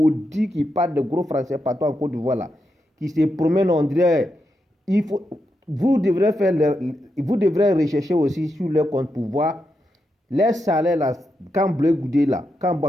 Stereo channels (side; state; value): both; normal; correlation 0.85